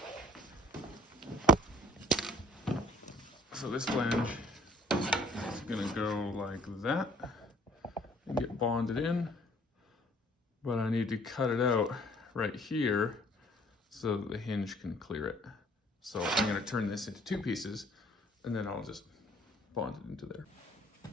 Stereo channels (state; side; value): normal; both; correlation 0.57